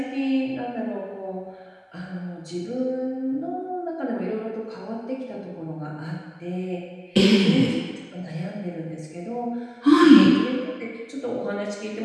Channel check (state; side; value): identical; both; correlation 1.00